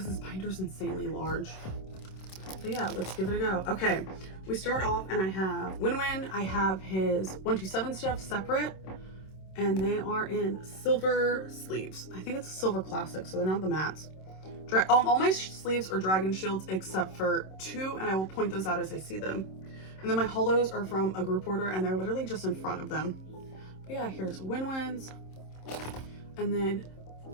this binder is insanely large. But yeah, let's give it a go. Okay, we start off and I have Win. I have his 127 stuff separate, and they are in silver sleeves. I think it's a silver classic, so they're not the mattes. All my sleeves are dragon shields except for 2, and I will point those out as I see them. And then my holos are from a group order, and they're literally just in front of them. But yeah, here's Wins. And then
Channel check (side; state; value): right; late; 26 ms